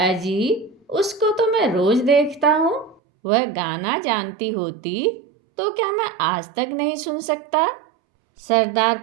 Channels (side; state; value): left; drops out; at 3.0 s